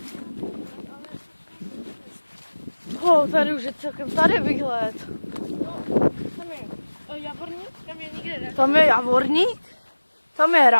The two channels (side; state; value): both; inverted; correlation -1.00